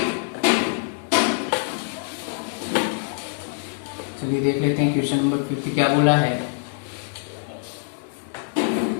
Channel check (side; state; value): right; silent; digital silence